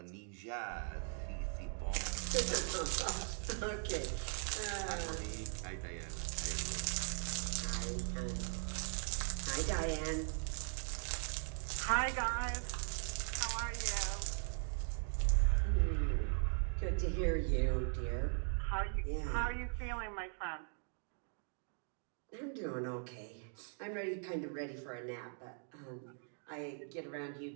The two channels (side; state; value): left; silent; 51 dB below the other